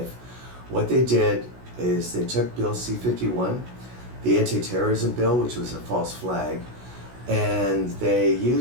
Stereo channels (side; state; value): left; late; 16 ms